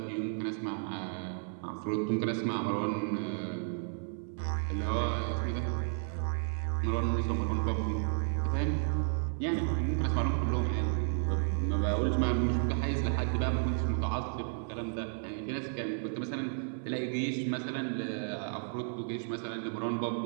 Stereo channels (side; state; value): left; silent; 56 dB below the other